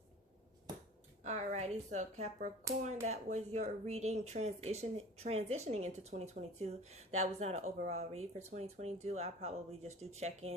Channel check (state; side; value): normal; both; correlation 0.41